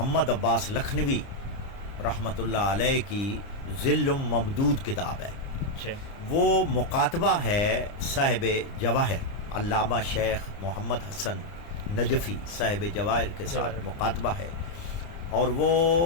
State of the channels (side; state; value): right; late; 29 ms